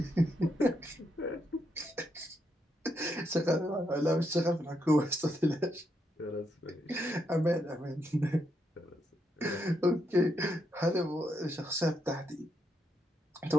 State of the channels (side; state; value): both; normal; correlation 0.79